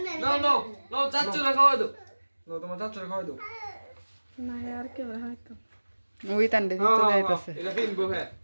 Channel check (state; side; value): inverted; both; correlation -1.00